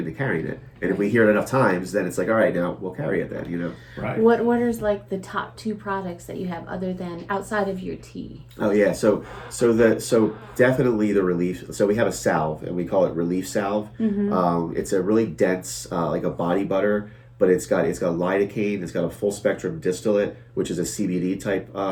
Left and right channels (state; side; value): identical; both; correlation 1.00